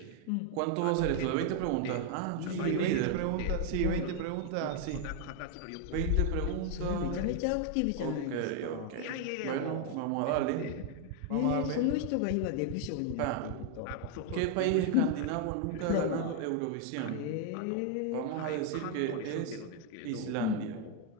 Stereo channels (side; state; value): both; different; correlation 0.00